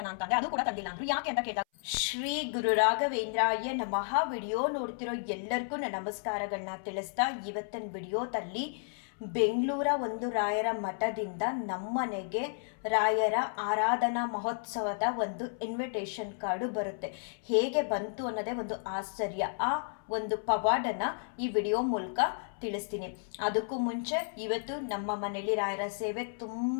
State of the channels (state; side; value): silent; right; 56 dB below the other